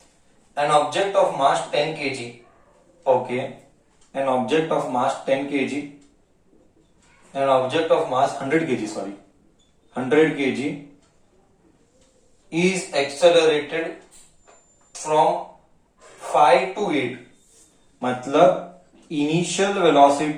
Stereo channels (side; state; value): both; identical; correlation 1.00